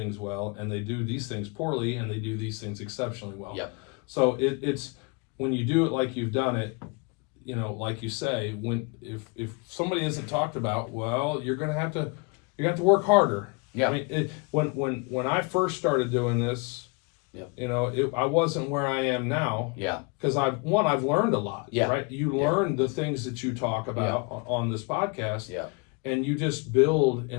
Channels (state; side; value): quieter; right; 31.0 dB